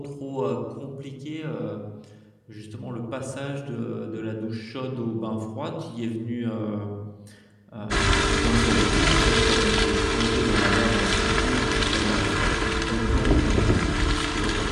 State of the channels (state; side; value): identical; both; correlation 1.00